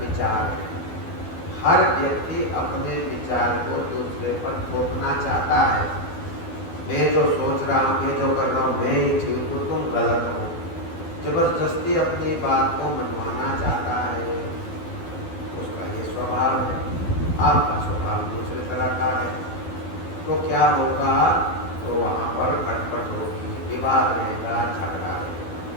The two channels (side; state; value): right; late; 12 ms